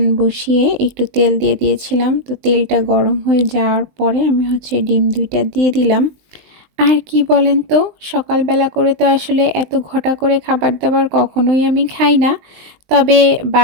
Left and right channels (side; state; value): left; late; 19 ms